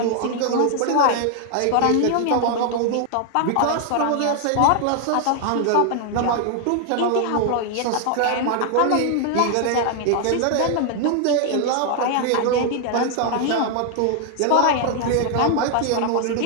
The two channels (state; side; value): different; both; correlation 0.00